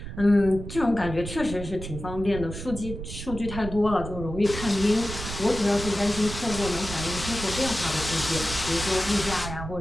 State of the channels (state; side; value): noise; right; rumble, 8 dB below the sound